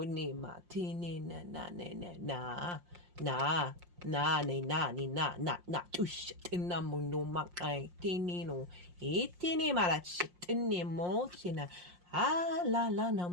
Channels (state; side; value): late; left; 5.6 ms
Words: tini na na na na na ni na ni na na na tush tina muno makai tini no itini marach tini mo china la la na